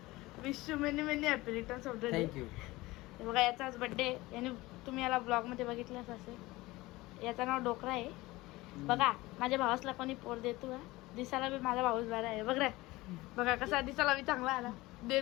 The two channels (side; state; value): right; quieter; 20.0 dB